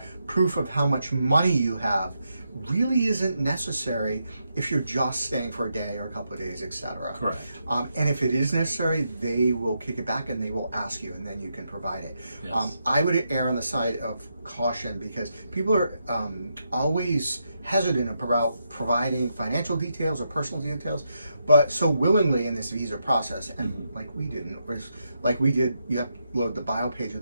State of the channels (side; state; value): both; inverted; correlation -0.82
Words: proof of how much money you have really isn't necessary if you're just staying for a day or a couple of days, etc. Correct. And if it is necessary, they will kick it back and they will ask you, and then you can provide it. I would err on the side of caution because people are always hesitant about providing financial details or personal details, but so willingly in this visa process, and like we didn't, like we did, you have to upload the bio page of